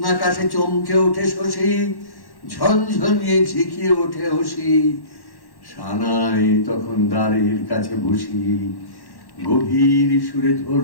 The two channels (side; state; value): right; late; 1.1 ms